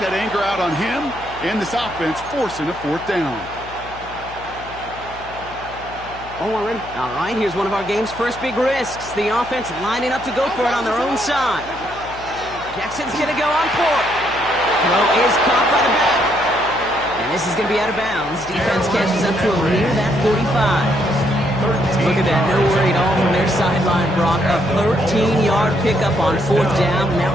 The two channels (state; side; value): noise; left; hum, 18 dB below the sound